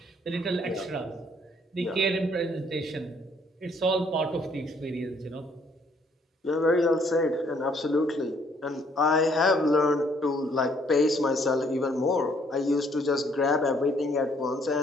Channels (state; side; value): normal; both; correlation 0.65